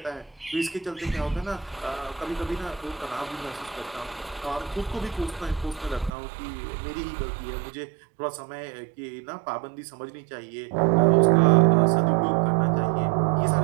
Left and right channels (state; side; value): drops out; left; at 6.1 s